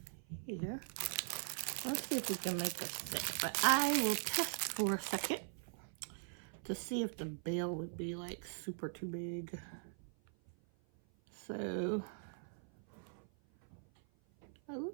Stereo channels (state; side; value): silent; left; 50 dB below the other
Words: here. Let's see if we can make a set. But I will test for a second to see if the bail would be like super too big. So it